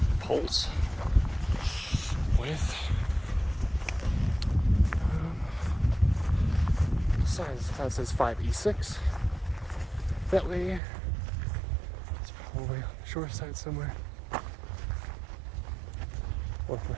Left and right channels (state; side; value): drops out; left; at 10.8 s